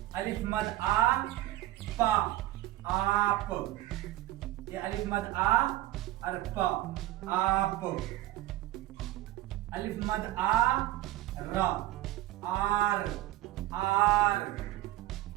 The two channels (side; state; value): left; quieter; 15.9 dB